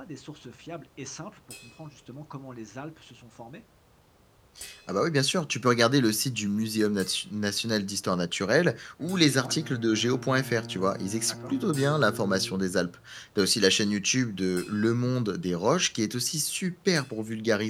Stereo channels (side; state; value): both; identical; correlation 1.00